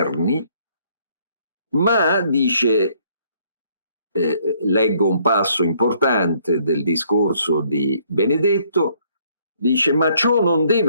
ma dice, leggo un passo importante del discorso di Benedetto, dice: ma ciò non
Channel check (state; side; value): inverted; both; correlation -0.66